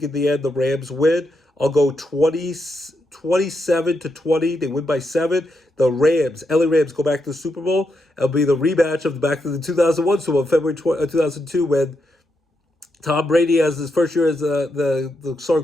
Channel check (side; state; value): both; normal; correlation 0.83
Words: in the end, the Rams win. I'll go 27-20. They win by 7. The Rams, LA Rams, go back to the Super Bowl. It'll be the rematch of back to the 2001 Super Bowl, February 2002, when Tom Brady, as his first year as the